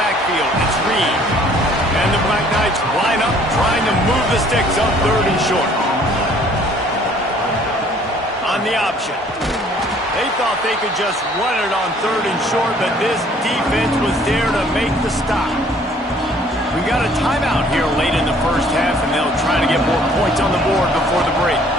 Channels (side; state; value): both; normal; correlation 0.57